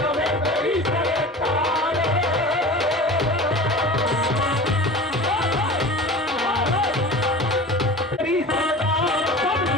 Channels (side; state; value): both; normal; correlation 0.36